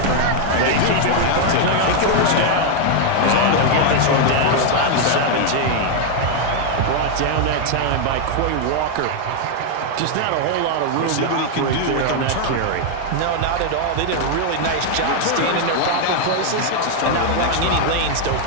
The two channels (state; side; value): different; both; correlation 0.00